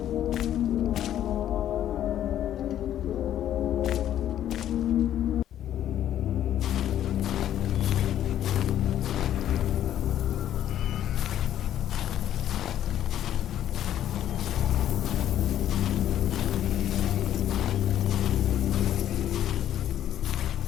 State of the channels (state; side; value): quieter; right; 11.3 dB